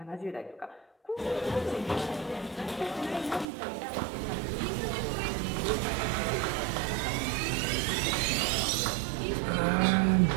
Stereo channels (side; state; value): left; drops out; at 3.5 s